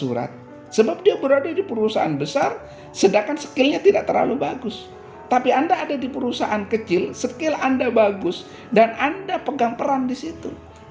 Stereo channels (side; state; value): both; identical; correlation 1.00